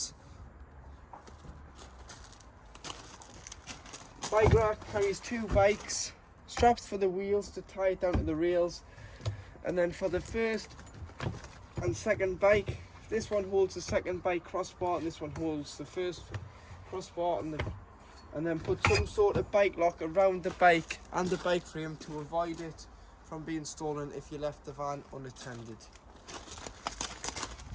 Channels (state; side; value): identical; both; correlation 1.00